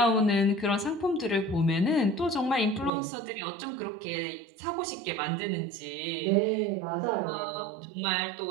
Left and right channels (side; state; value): left; drops out; at 2.9 s